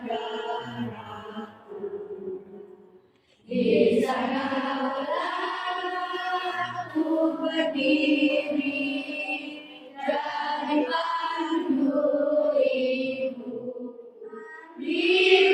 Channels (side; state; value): both; identical; correlation 1.00